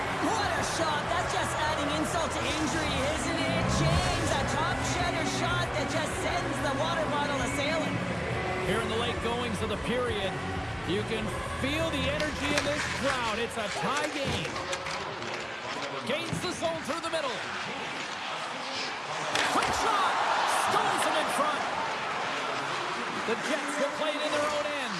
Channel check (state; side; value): identical; both; correlation 1.00